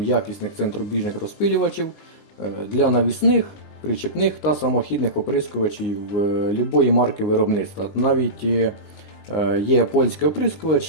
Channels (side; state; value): right; late; 19 ms